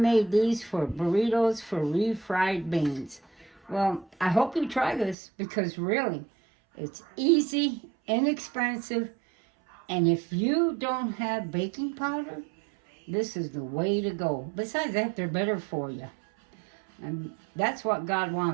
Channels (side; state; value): left; drops out; at 5.2 s